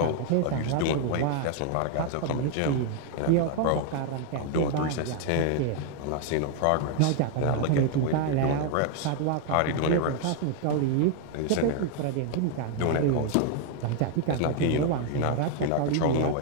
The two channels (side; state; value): both; different; correlation 0.00